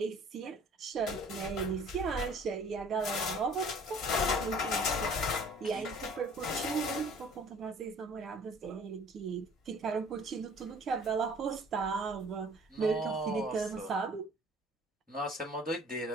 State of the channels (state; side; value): normal; both; correlation 0.51